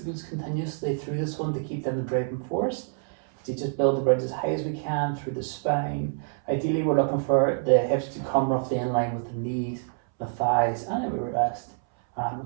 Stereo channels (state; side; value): silent; left; 60 dB below the other